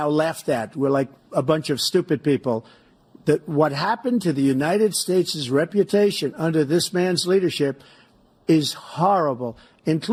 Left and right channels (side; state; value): both; identical; correlation 1.00